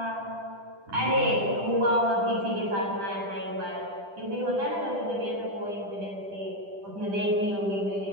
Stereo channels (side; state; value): left; late; 10 ms